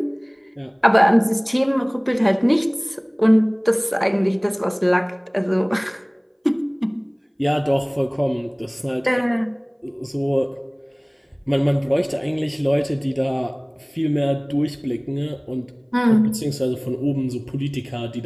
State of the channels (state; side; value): identical; both; correlation 1.00